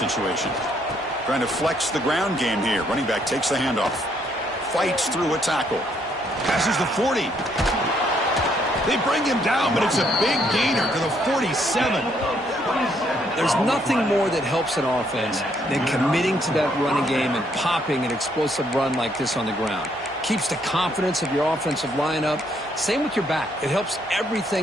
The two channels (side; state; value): both; normal; correlation 0.70